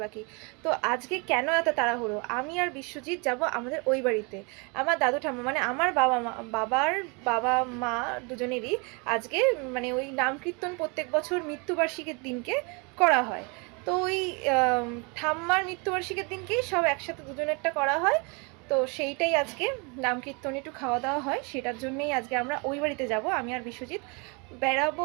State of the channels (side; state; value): left; quieter; 31.7 dB